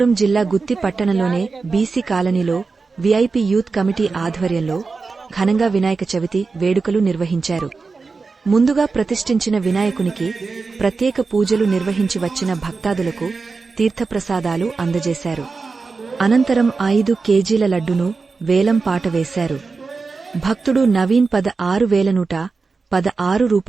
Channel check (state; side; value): quieter; left; 4.4 dB